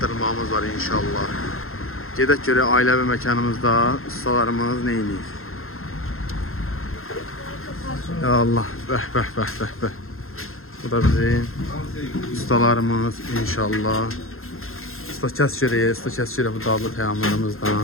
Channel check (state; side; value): late; right; 0.61 ms